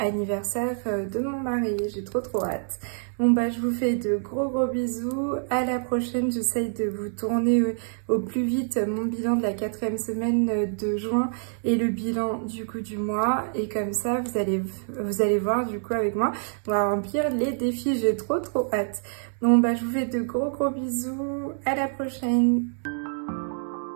de mon mari. J'ai trop hâte. Bon bah je vous fais de gros bisous, à la prochaine, j'essaye de vous tourner au plus vite mon bilan de la 4e semaine de juin et le bilan du coup du mois, et comme ça vous allez voir du coup avec moi, on va remplir les défis, j'ai trop hâte. Bon bah je vous fais de gros bisous, à la prochaine.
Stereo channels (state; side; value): silent; left; 61 dB below the other